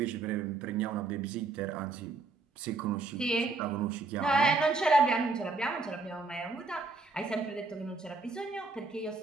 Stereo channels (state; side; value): quieter; left; 3.7 dB